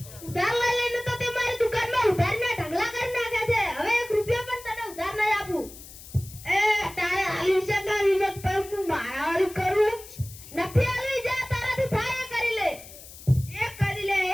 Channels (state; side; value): noise; left; hiss, 17 dB below the sound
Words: ઉધાર લઈ લઈને તો તે મારી દુકાનમાં ઉધારના ઢગલા કરી નાખ્યા છે. હવે 1 રૂપિયો પણ તને ઉધાર નહીં આપું. એ તારે આલી છે ના વિનોદ પર હું મારાવાળી કરું નથી આલી. જા તારાથી થાય એ કરી લે, એ કરી લે.